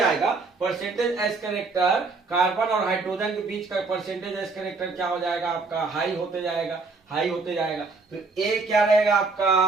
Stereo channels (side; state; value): left; quieter; 4.0 dB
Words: परसेंटेज एस कैरेक्टर कार्बन और हाइड्रोजन के बीच का परसेंटेज एस कैरेक्टर क्या हो जाएगा आपका, हाई होते जाएगा, हाई होते जाएगा। तो ए क्या रहेगा